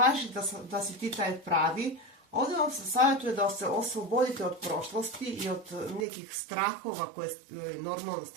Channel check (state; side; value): drops out; left; at 6.1 s